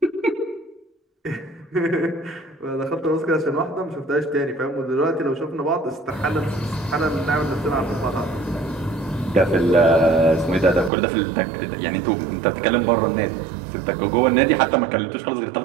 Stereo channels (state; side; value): drops out; left; at 10.9 s